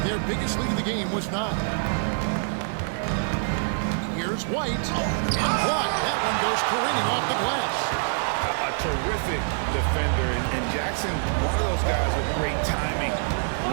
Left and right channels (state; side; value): silent; left; digital silence